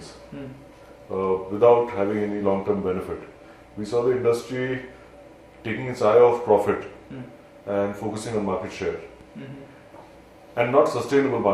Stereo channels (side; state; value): both; identical; correlation 1.00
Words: without having any long-term benefit. We saw the industry taking its eye off profit and focusing on market share and not sustainable